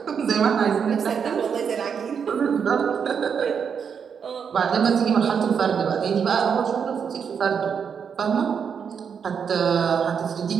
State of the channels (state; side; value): quieter; left; 6.9 dB